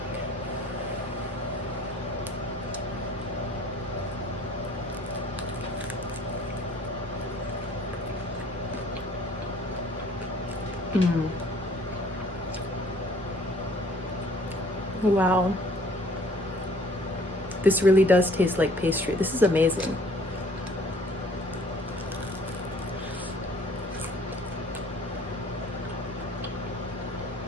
Wow. This really does taste like pastry. This is amazing.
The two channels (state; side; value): normal; both; correlation 0.55